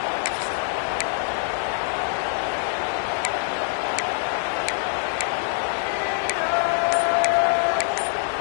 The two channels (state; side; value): silent; right; 62 dB below the other